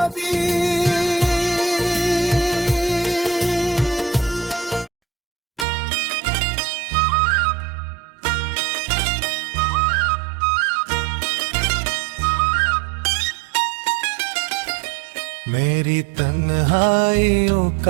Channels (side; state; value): left; drops out; at 5.7 s